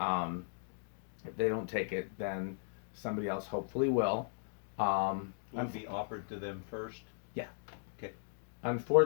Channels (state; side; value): silent; right; digital silence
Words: if they don't take it, then somebody else hopefully will. Will it be offered to them first? Yeah. Okay.